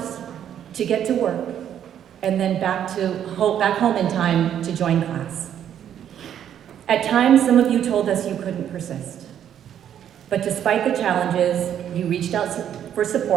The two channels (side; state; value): left; quieter; 9.8 dB